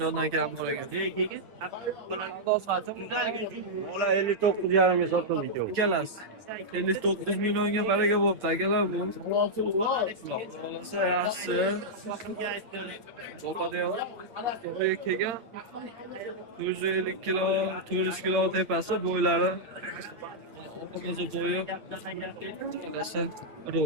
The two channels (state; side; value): late; left; 9.1 ms